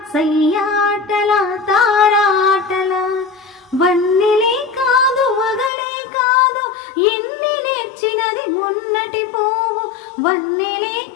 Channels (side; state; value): right; drops out; at 5.7 s